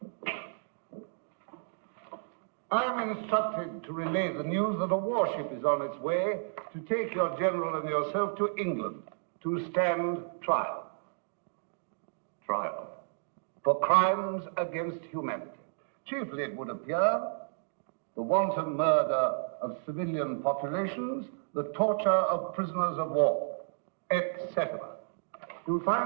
I am instructed to relay the news that a warship is on its way to take your general and yourself to England to stand trial. Trial. For crimes against humanity. Chiefly, it would appear, the wanton murder of civilian populations, the torture of prisoners of war, etc. You'll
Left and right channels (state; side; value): silent; left; digital silence